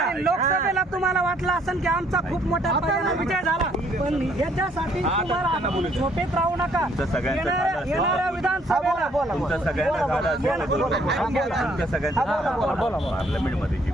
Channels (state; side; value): normal; both; correlation 0.65